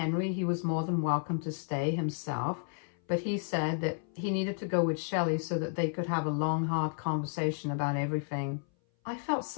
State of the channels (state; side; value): silent; right; 56 dB below the other